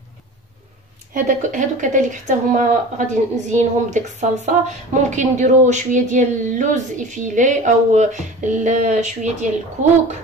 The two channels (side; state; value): both; normal; correlation 0.37